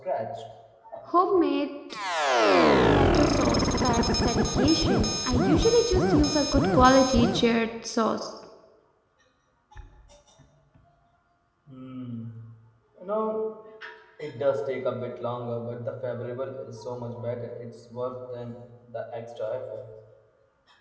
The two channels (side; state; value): both; identical; correlation 1.00